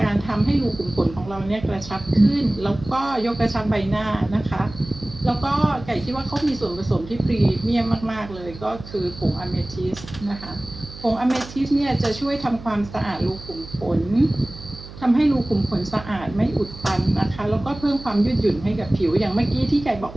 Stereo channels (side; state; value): right; noise; hum, 15 dB below the sound